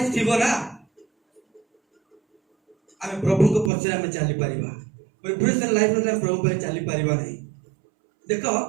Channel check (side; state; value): left; drops out; at 3.7 s